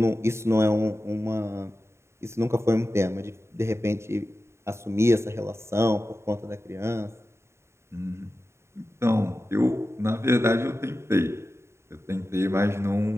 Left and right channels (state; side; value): late; left; 0.13 ms